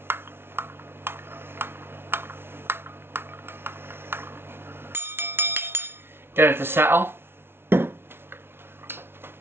Get it to settle.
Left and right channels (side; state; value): left; late; 0.11 ms